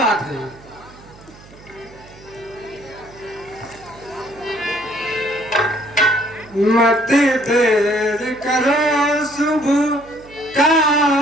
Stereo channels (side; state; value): right; noise; hum, 22 dB below the sound